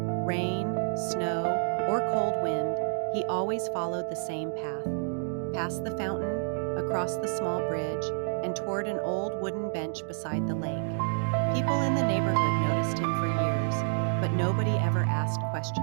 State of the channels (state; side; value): silent; left; digital silence